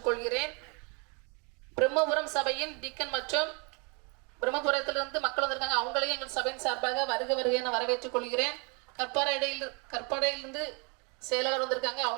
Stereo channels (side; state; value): left; quieter; 32.9 dB